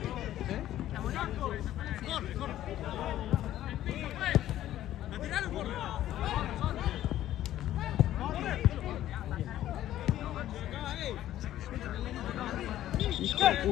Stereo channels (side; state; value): right; quieter; 13.0 dB